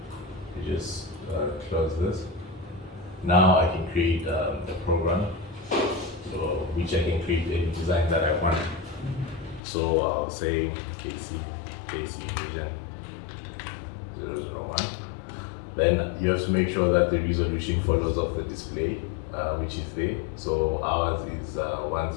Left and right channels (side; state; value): right; drops out; at 9.6 s